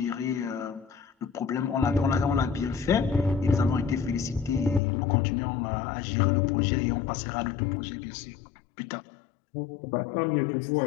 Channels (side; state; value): right; drops out; at 4.8 s